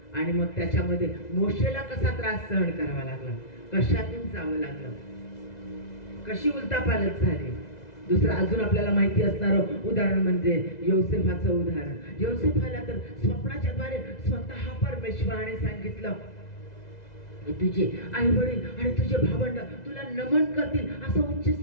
आणि मग त्याच्यामध्ये मोशेला कसा त्रास सहन करावा लागला, कशातून जावं लागलं, कशी उलटापालट झाली. दुसरं अजून आपल्याला माहिती असणारं उदाहरण म्हणजे योसेफाचं उदाहरण. योसेफाला तर स्वप्नाच्या द्वारे स्वतः परमेश्वराने सांगितलं, तुझे आई वडील आणि तुझे भावंड तुला नमन करतील, असं उच्च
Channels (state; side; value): late; right; 2.0 ms